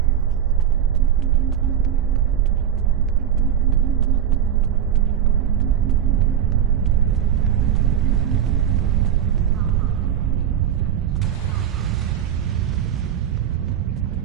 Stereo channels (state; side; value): quieter; left; 9.6 dB